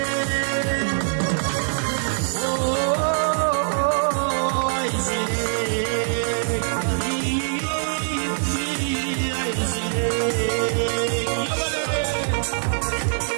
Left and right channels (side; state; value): left; silent; 59 dB below the other